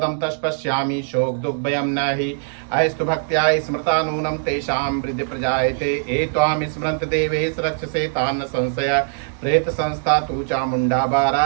तस्पश्यामि शोक दुःखभयं न हि अयस्तु भक्त्या स्मृता नूनं तेषां वृद्धि प्रजायते। एत्वां स्मरन्त देवेश रक्षसे तान्न संशय प्रेत संस्था तु चामुंडा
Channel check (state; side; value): silent; left; digital silence